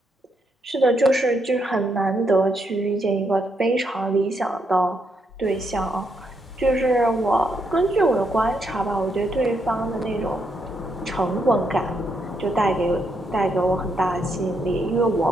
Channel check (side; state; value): both; normal; correlation 0.78